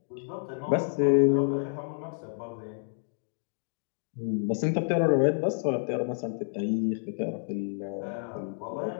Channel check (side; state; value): right; silent; digital silence